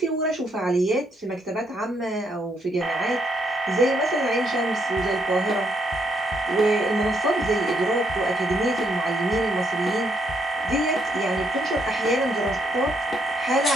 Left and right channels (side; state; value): both; normal; correlation 0.75